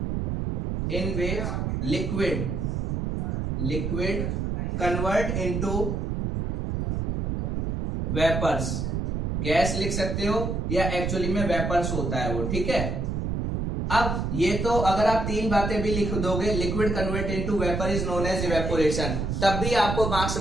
liquid convert into vapours. Gas लिख सकते हो या एक्चुअली में वेपर्स होता है वो, ठीक है। अब ये तो अगर आप तीन बातें भी लिख दोगे, liquid convert into vapour is known as evaporation, तब भी आपको मार्क्स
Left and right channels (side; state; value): right; noise; rumble, 1 dB below the sound